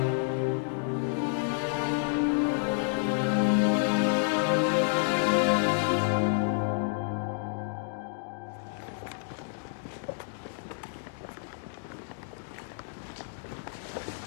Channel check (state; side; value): silent; right; digital silence